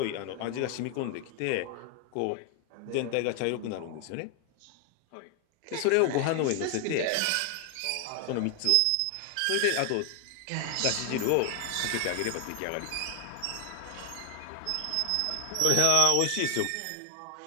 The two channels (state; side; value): different; both; correlation 0.00